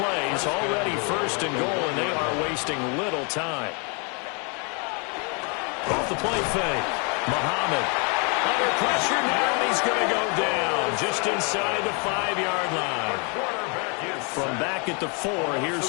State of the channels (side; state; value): right; quieter; 35.1 dB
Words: already first and goal, and they are wasting little time. Off the play fake. Muhammad under pressure now, and he's going to go down just inside the 5-yard line. From back at the 4, here's